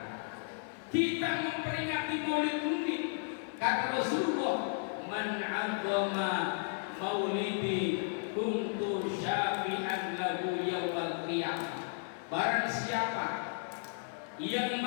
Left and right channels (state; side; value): silent; right; 55 dB below the other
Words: Kita memperingati Maulid Nabi, kata Rasulullah, man 'azzama maulidi kuntu syafi'an lahu yaumil qiyamah. Barang siapa yang